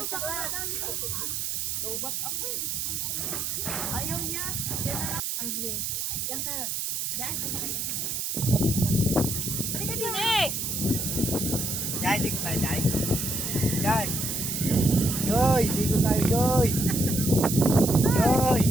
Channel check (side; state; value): right; noise; hiss, 2 dB below the sound